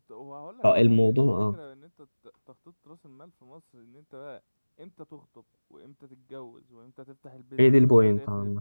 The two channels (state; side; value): inverted; both; correlation -1.00